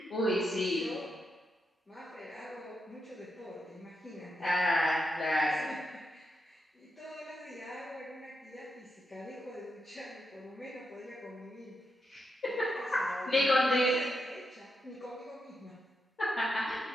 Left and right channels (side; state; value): both; normal; correlation 0.84